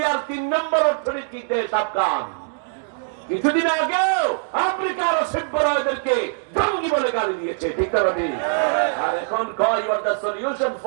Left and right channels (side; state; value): left; silent; digital silence